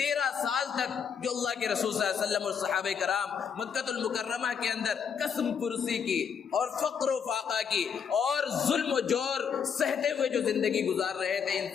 سال تک جو اللہ کے رسول صلی اللہ علیہ وسلم اور صحابہ کرام مکہ المکرمہ کے اندر قسم پرسی کی اور فقر و فاقہ کی اور ظلم و جور سہتے ہوئے جو زندگی گزار رہے تھے، ان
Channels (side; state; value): right; quieter; 7.1 dB